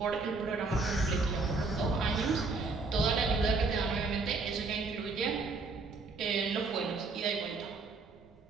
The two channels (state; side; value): quieter; left; 3.9 dB